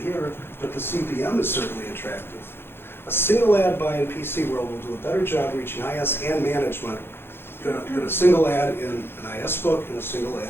but the CPM is certainly attractive. A single ad buy in PC World will do a better job reaching IS and management than a single ad in an IS book and a single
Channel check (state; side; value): late; right; 0.11 ms